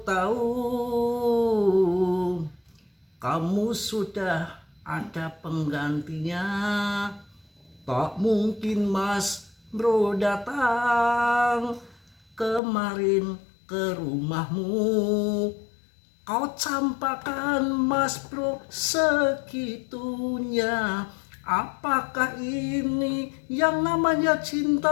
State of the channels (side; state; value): right; drops out; at 12.6 s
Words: tahu kamu sudah ada penggantinya, tak mungkin Mas Bro datang kemarin ke rumahmu. Kau campakan Mas Bro segitunya. Apakah ini yang namanya